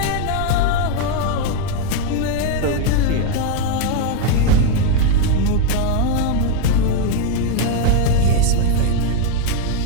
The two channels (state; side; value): different; both; correlation 0.01